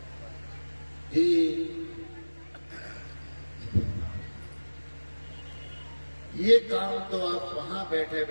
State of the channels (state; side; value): inverted; both; correlation -1.00